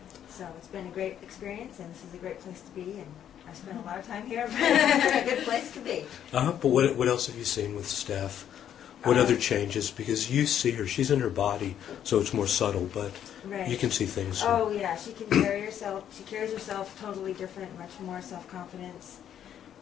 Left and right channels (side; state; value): right; quieter; 9.9 dB